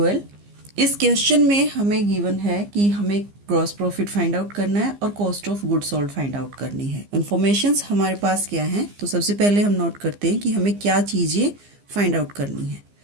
इस question में हमें गिवन है कि हमें ग्रॉस प्रॉफिट फाइंड आउट करना है और cost of goods sold find out करनी है। इन्फॉर्मेशंस हमारे पास क्या है, तो सबसे पहले हम नोट करते हैं कि हमें क्या चीज़ें फाइंड आउट करनी है।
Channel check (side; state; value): left; late; 15 ms